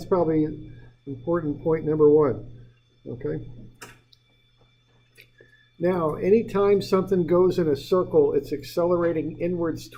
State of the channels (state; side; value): identical; both; correlation 1.00